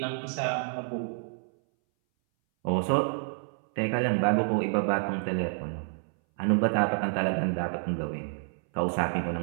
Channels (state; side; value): silent; left; 59 dB below the other